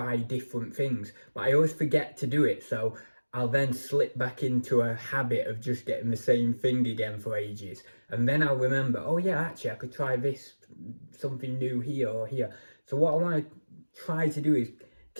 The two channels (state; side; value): inverted; both; correlation -1.00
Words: different things, but I always forget to do it, so I'll then slip back into a habit of just getting the same thing again for ages, and then I'll remember, oh yeah, actually I could try this, something new here or here. So what I want to try to do is